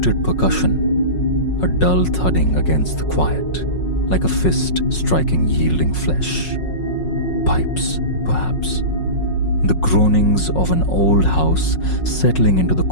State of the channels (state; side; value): late; right; 5.5 ms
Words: percussion, a dull thudding against the quiet, like a fist striking yielding flesh. Pipes, perhaps. The groanings of an old house settling into the